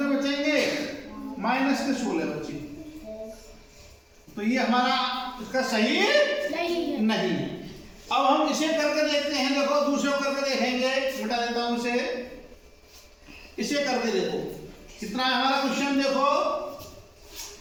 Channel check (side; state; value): both; identical; correlation 1.00